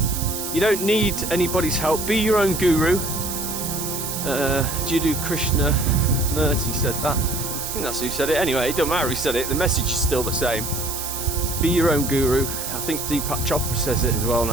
You don't need anybody's help. Be your own guru. Jiddu Krishnamurti said that. I think that's who said it. Anyway, it doesn't matter who said it. The message is still the same. Be your own guru. I think Deepak Chopra says it as well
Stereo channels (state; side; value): noise; right; hiss, 5 dB below the sound